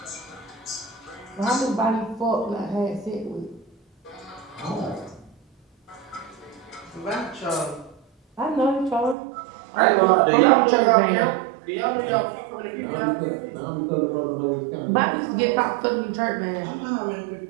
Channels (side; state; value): left; drops out; at 9.2 s